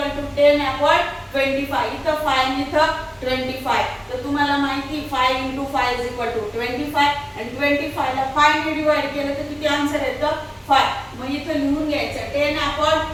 to 10 upon 25. इथं 5 आणि इथं 25. तर तुम्हाला माहिती 5 इंटू 5 इज इक्वल टू 25 आणि 25 ला 5 ने डिवाइड केलं तर किती आन्सर येतं 5. मग इथं लिहून घ्यायचं 10 upon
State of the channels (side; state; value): both; identical; correlation 1.00